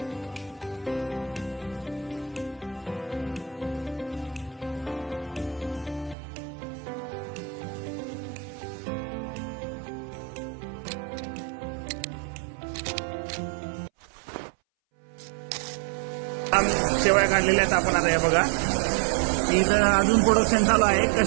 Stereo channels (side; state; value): left; drops out; at 6.2 s